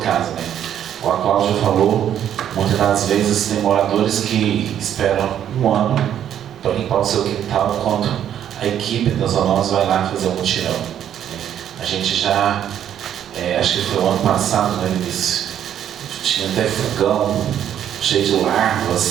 né. Como a Cláudia falou, muitas das vezes tem moradores que esperam 1 ano para limpar o seu quintal, enquanto a equipe das zoonoses vai lá fazer um mutirão. A gente já, acho que foi o ano passado, né, Vinícius, tinha até fogão cheio de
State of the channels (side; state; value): left; quieter; 10.1 dB